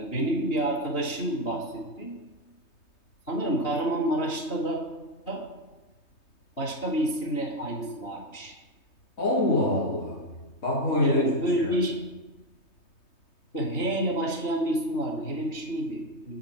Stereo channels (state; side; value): late; right; 3.2 ms